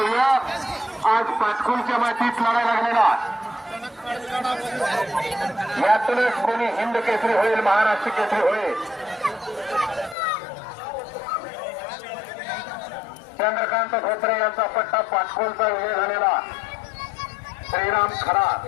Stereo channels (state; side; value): drops out; right; at 10.2 s